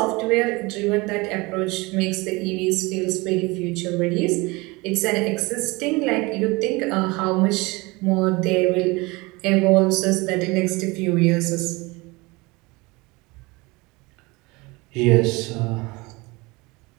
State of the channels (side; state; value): left; quieter; 24.3 dB